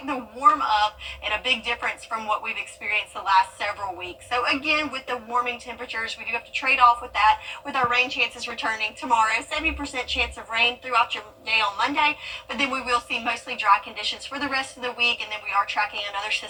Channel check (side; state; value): both; identical; correlation 1.00